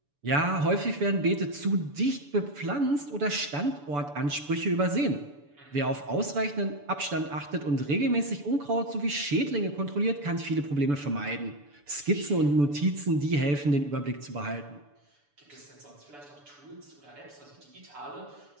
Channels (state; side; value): late; left; 6.9 ms